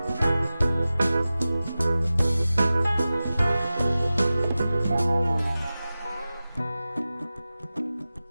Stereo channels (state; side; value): inverted; both; correlation -0.95